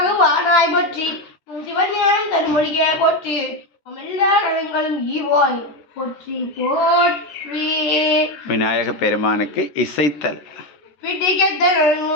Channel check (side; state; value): right; late; 13 ms